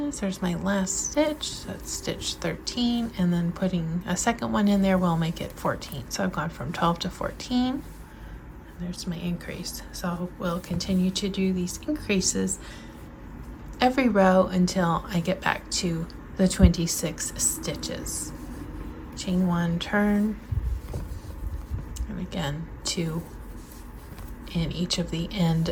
There's my last stitch. That's stitch 13, and then putting a second one in there will make it 14. So I've gone from 12 to 14. And there's my increase. So we'll continue to do these increases every row until I get back to the 26 stitches. Chain 1, turn, and again 2 in each of the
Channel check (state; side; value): identical; both; correlation 1.00